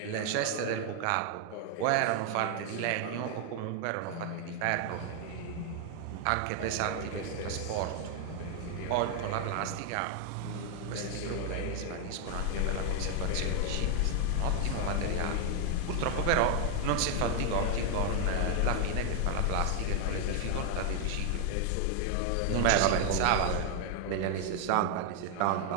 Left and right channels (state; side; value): different; both; correlation 0.00